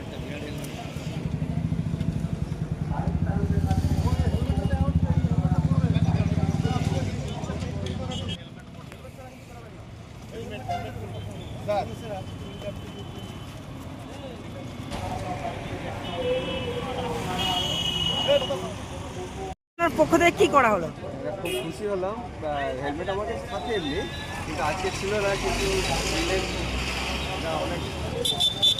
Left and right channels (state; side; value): identical; both; correlation 1.00